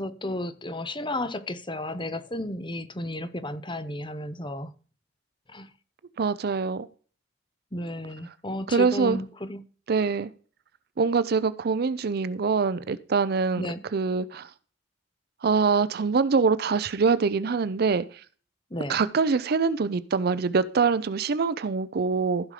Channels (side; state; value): left; quieter; 4.2 dB